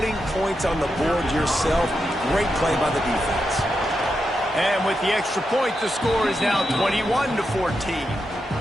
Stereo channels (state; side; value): normal; both; correlation 0.86